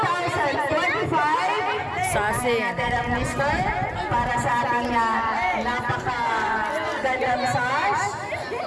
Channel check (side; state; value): both; identical; correlation 1.00